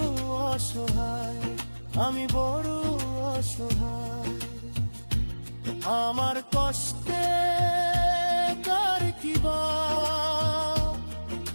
অসহায়, আমি বড় অসহায়। আমার কষ্টে কার কিবা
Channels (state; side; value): inverted; both; correlation -1.00